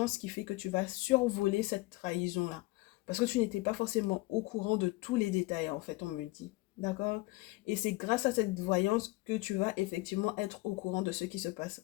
qui fait que tu vas survoler cette trahison-là. Parce que tu n'étais pas forcément au courant de tous les détails, en fait, on me dit. D'accord? Et c'est grâce à cette voyance que tu vas effectivement être au courant de ce qui se passe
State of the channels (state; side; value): quieter; right; 22.2 dB